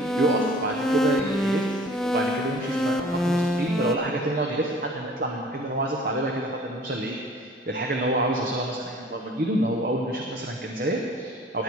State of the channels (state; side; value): normal; both; correlation 0.49